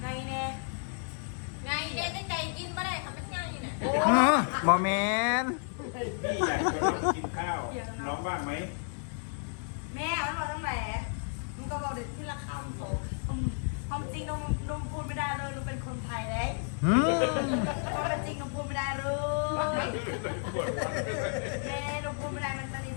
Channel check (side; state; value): right; silent; 57 dB below the other